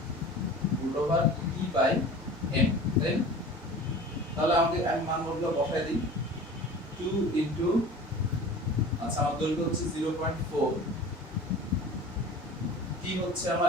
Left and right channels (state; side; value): normal; both; correlation 0.39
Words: root over t by m, then তাহলে আমাদের আমি মানগুলো বসাই দিই 2 into, আচ্ছা আমার দৈর্ঘ্য হচ্ছে 0.4, t হচ্ছে